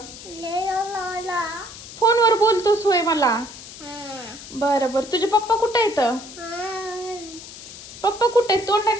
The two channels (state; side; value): noise; left; hiss, 15 dB below the sound